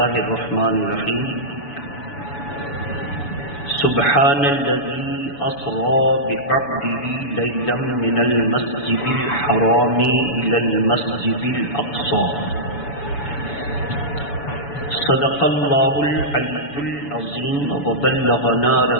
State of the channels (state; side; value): late; right; 7.0 ms